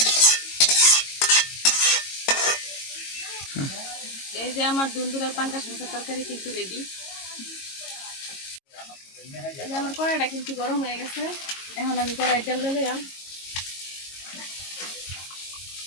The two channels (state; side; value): late; right; 22 ms